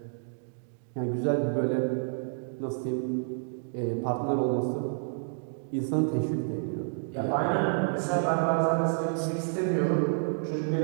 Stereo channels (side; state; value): left; silent; digital silence